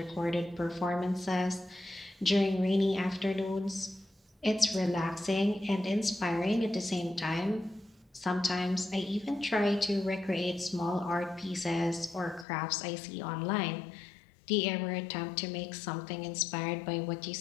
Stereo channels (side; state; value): right; drops out; at 12.5 s